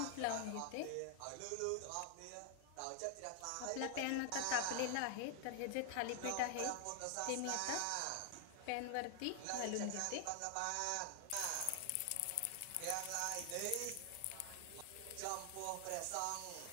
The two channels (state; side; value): different; both; correlation 0.00